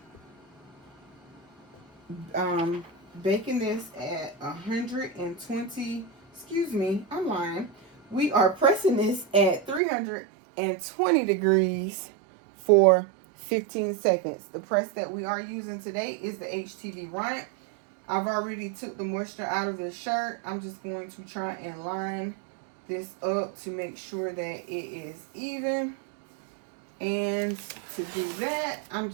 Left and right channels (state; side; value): drops out; left; at 9.8 s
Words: baking this at 120. Excuse me, I'm lying. We are pressing this at 320 degrees for 15 seconds. The press that we are using today is the HTV Runt. I've already took the moisture out of the shirt. I'm just going to try and line this up to make sure that it is even. And to do that, I'm